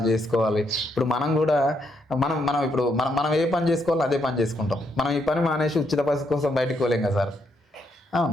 చేసుకోవాలి. ఇప్పుడు మనం కూడా మనం ఇప్పుడు మనం ఏ పని చేసుకోవాలో అదే పని చేసుకుంటాం. మనం ఈ పని మానేసి ఉచిత బస్సు కోసం బయటికి పోలేం కదా సార్.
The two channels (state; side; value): normal; both; correlation 0.76